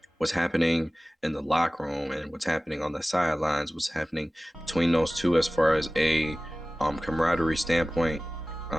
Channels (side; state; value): both; normal; correlation 0.97